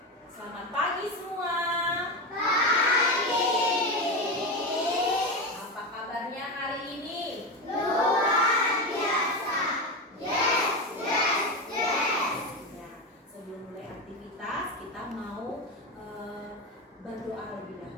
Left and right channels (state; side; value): normal; both; correlation 0.17